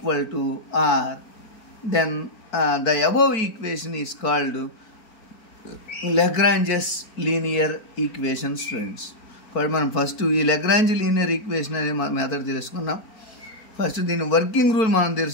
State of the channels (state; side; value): late; right; 4.6 ms